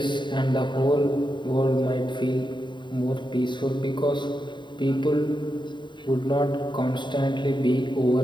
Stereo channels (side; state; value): right; late; 0.23 ms